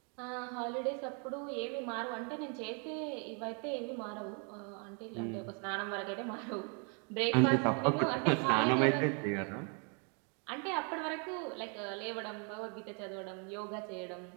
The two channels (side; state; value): left; quieter; 37.9 dB